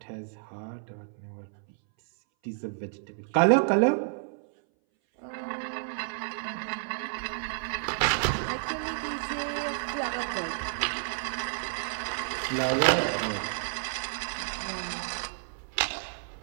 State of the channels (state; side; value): silent; left; 58 dB below the other